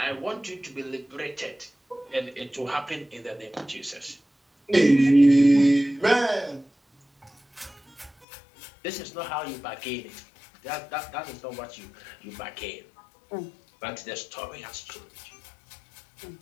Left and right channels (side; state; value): right; drops out; at 8.2 s